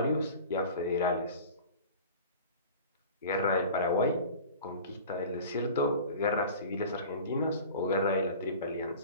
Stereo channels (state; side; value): inverted; both; correlation -0.39